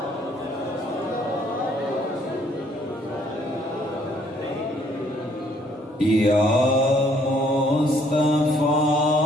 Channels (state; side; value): normal; both; correlation 0.64